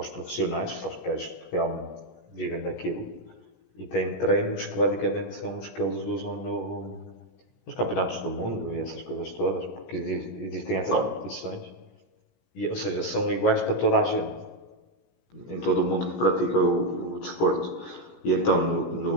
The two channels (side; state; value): right; late; 17 ms